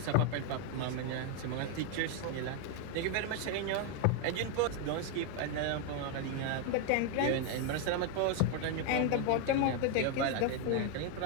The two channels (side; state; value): both; different; correlation 0.01